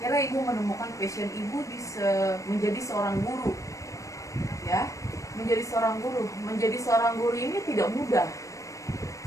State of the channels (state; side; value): late; right; 0.16 ms